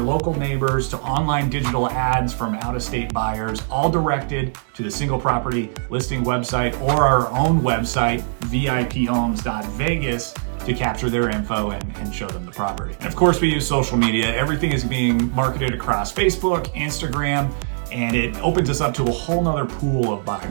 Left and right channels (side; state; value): left; silent; digital silence